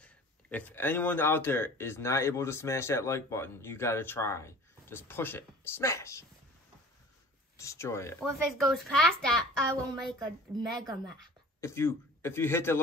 If anyone out there is not able to smash that like button, you got to try. Just push it. Smash. Destroy it. Well, if it goes past that, I will make a mega map. If you hit the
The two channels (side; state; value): both; normal; correlation 0.43